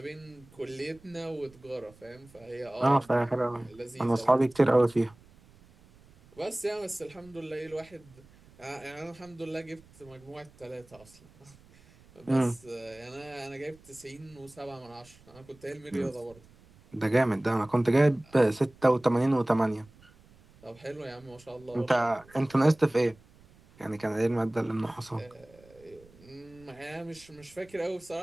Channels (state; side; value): noise; right; rumble, 26 dB below the sound